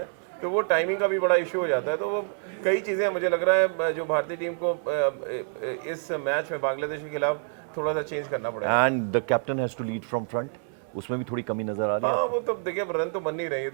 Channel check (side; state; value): left; silent; 60 dB below the other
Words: तो वो टाइमिंग का भी बड़ा इशू हो जाता है। तो वो कई चीज़ें मुझे लग रहा है जो भारतीय टीम को इस मैच में बांग्लादेश के खिलाफ थोड़ा सा चेंज करना पड़ेगा। And the captain has to lead from front, उसमें भी थोड़ी कमी नजर आ रही है। हाँ, वो तो देखिए रन तो बन नहीं रही है,